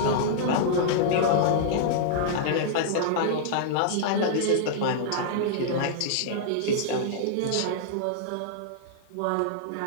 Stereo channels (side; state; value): both; different; correlation -0.02